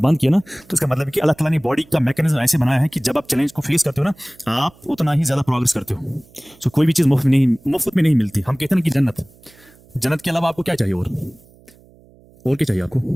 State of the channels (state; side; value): noise; right; hum, 27 dB below the sound